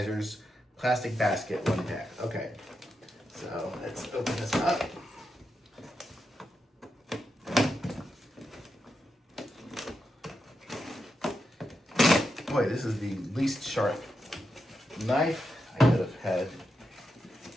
plastic basket 1-pack. Okay, so let's open this up. Boy, this is the least sharp knife I could have had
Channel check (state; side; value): normal; both; correlation 0.86